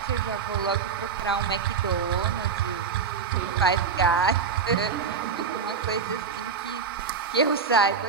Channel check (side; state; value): left; quieter; 5.8 dB